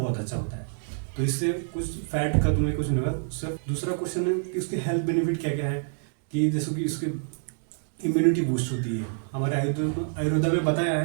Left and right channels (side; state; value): left; silent; digital silence